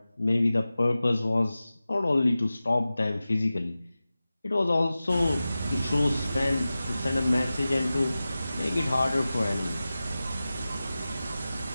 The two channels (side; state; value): both; inverted; correlation -0.95